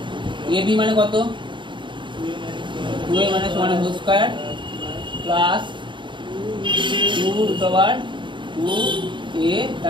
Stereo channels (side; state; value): left; late; 0.23 ms